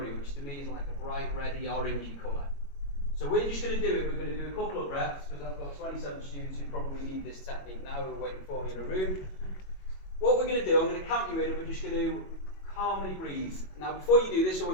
which to me is like a bright reddy orangey colour. So we're just going to do it. We're going to do a couple of breaths because I've got 27 students who probably need this technique now who are waiting for me in a room. What we're going to do, I'm going to count you in and we're just going to calmly breathe. Now before you do this, I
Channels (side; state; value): right; late; 22 ms